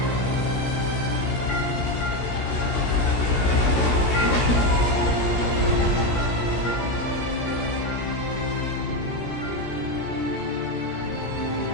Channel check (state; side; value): late; right; 16 ms